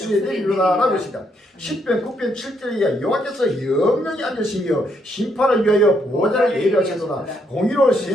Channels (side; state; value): both; normal; correlation 0.74